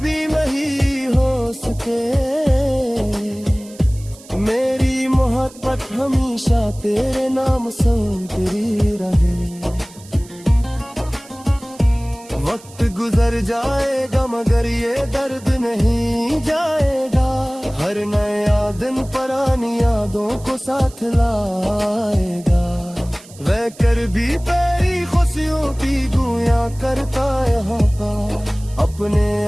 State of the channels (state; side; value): noise; right; hiss, 22 dB below the sound